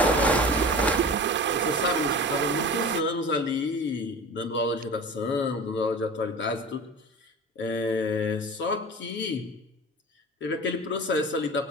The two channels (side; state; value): both; normal; correlation 0.35